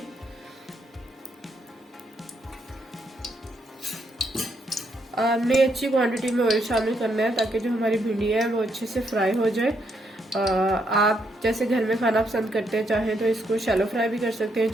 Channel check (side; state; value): both; normal; correlation 0.76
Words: हमने अच्छी क्वांटिटी में ऑयल शामिल करना है ताकि जो हमारी भिंडी है वो अच्छे से फ्राई हो जाए। आप जैसे घर में खाना पसंद करते हैं, चाहे तो इसको शैलो फ्राई भी कर सकते हैं,